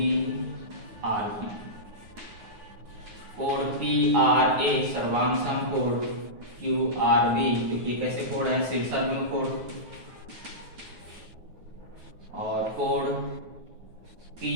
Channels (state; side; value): late; left; 9.4 ms